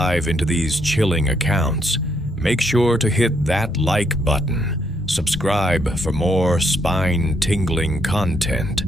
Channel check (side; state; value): both; normal; correlation 0.74